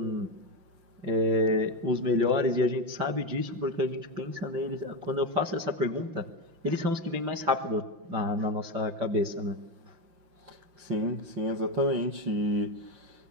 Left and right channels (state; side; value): late; left; 5.8 ms